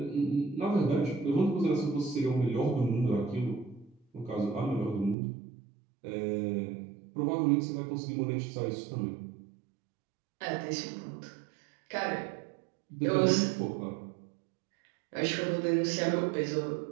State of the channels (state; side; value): drops out; left; at 5.2 s